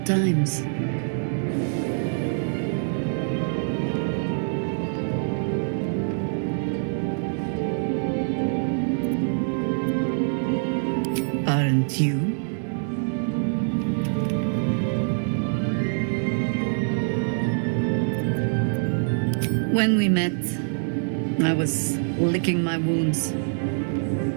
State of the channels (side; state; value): left; silent; 62 dB below the other